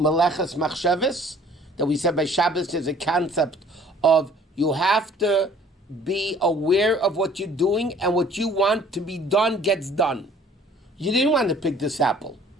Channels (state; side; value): normal; both; correlation 0.54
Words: Machsheves, that we said by Shabbos there's a concept of you have to be aware of what you're doing, and what you want to be done gets done. You didn't want to pick this apple.